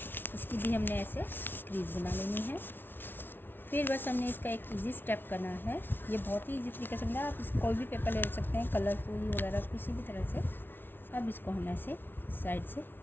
इसकी भी हमने ऐसे क्रीज बना लेनी है। फिर बस हमने इसका एक इजी स्टेप करना है। ये बहुत ही इजी तरीके से बनाया। आप इस कोई भी पेपर ले सकते हैं, कलरफुल वगैरह किसी भी तरह से। अब इसको हम ऐसे साइड से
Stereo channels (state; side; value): late; right; 0.10 ms